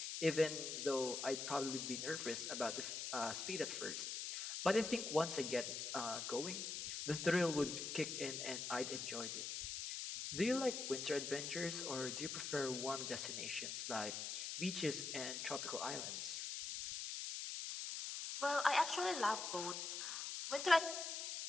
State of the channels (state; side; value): noise; left; hiss, 4 dB below the sound